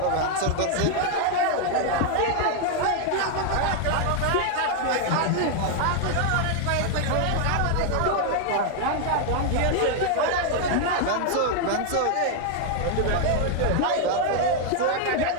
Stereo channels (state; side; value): different; both; correlation 0.00